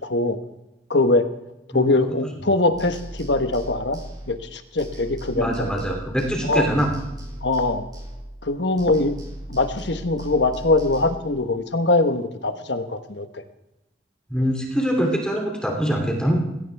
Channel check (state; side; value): normal; both; correlation 0.18